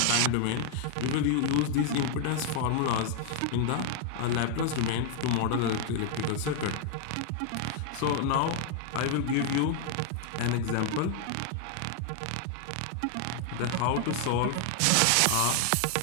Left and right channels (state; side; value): different; both; correlation 0.00